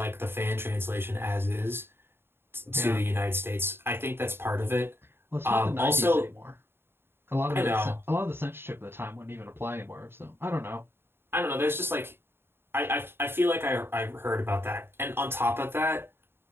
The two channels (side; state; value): left; late; 0.11 ms